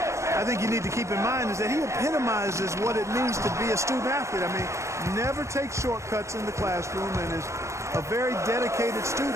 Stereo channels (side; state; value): left; late; 0.14 ms